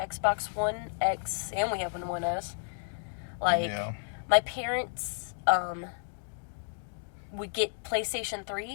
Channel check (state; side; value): silent; right; digital silence